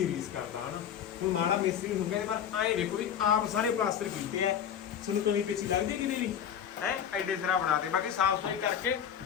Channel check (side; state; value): right; quieter; 9.0 dB